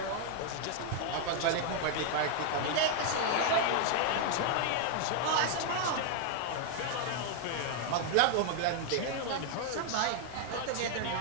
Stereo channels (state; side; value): different; both; correlation 0.00